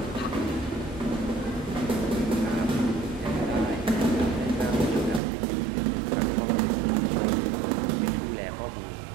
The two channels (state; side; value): drops out; left; at 5.2 s